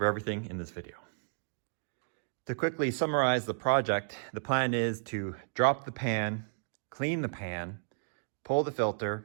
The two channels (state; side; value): silent; left; digital silence